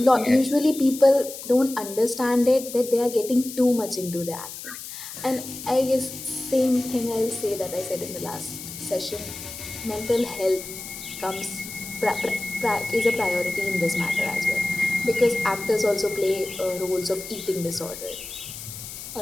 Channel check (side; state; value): left; noise; hiss, 11 dB below the sound